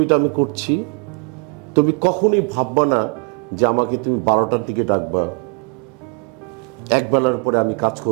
আমি করছি, তুমি কখনোই ভাববা না যে আমাকে তুমি 12টার দিকে ডাকবা, একবেলার পরে আমি কাজ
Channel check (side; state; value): left; quieter; 34.9 dB